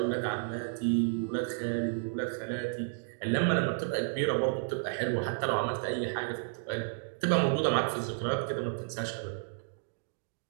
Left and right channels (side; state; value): left; silent; digital silence